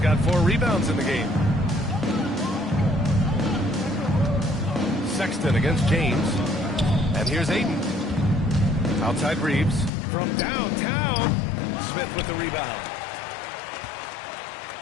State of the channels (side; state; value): right; drops out; at 9.9 s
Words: got 4 rebounds in the game. Sexton against James. And here's Ayton. Outside Reeves. From downtown. Smith with the rebound.